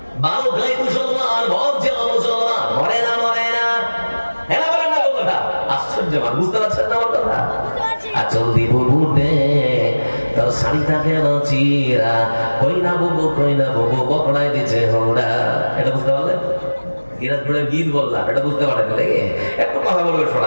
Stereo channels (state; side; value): inverted; both; correlation -1.00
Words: 12 গাই মুসলমান, ভরছে মুসলমান, মরে না মরে না। হ্যাঁ বলেন না কথা? আশ্চর্য, বুঝতে পারছেন না আমার কথা? আচল দিব বুঝে তোর শাড়িটা কেন চিরা, কই না বুবু বকড়াই দিচ্ছে হোড়া। এটা বুঝতে পারলেন? দিনাজপুরের গীত বললাম, এটা বুঝতে পারেন নাকি? একটু কথা বলবে